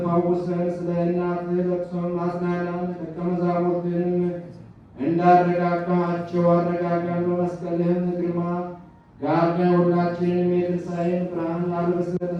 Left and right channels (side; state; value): both; identical; correlation 1.00